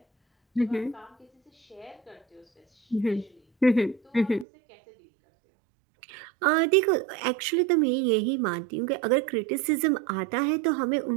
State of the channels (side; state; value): left; drops out; at 4.5 s